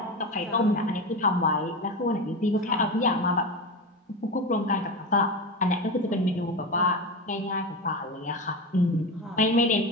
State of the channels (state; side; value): normal; both; correlation 0.22